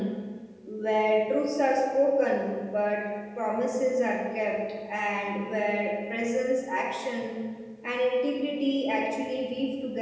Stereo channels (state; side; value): identical; both; correlation 1.00